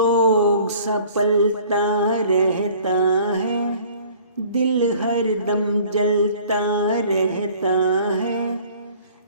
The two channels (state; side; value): inverted; both; correlation -0.52